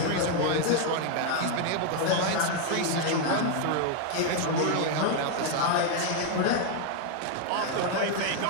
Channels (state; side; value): different; both; correlation 0.00